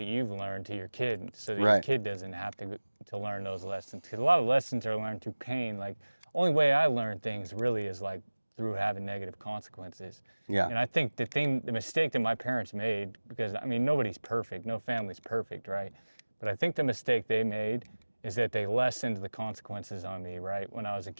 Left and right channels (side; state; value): both; inverted; correlation -1.00